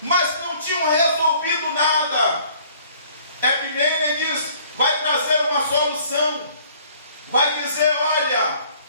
mas não tinham resolvido nada. Epimênides vai trazer uma solução, vai dizer: olha,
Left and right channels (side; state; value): both; inverted; correlation -0.56